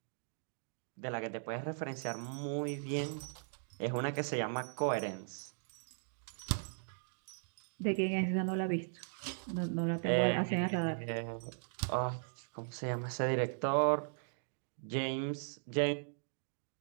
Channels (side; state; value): left; silent; digital silence